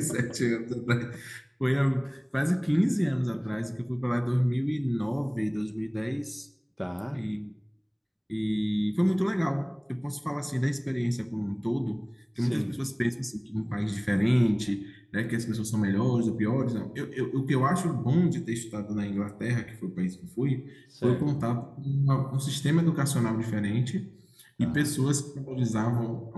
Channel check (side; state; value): both; identical; correlation 1.00